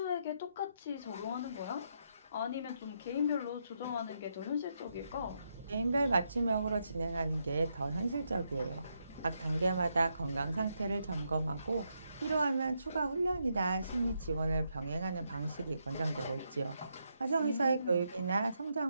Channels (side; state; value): both; inverted; correlation -0.80